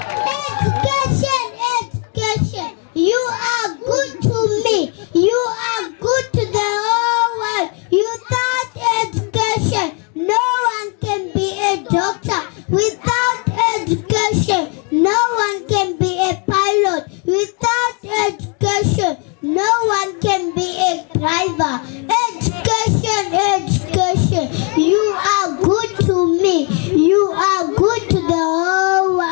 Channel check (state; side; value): quieter; right; 33.7 dB